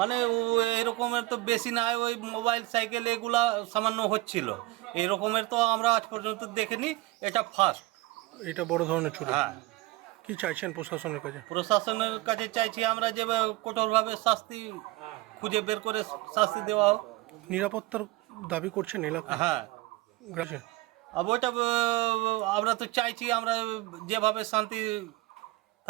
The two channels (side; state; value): left; quieter; 20.1 dB